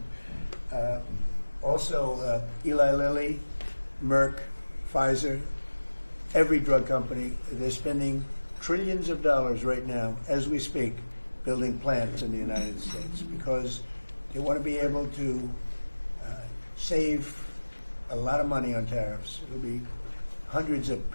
Also, Eli Lilly, Merck, Pfizer, every drug company, they're spending trillions of dollars right now, as we speak, building plants in the United States because they want to be able to save a lot of money on tariffs. It'll be hundreds of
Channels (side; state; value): both; inverted; correlation -1.00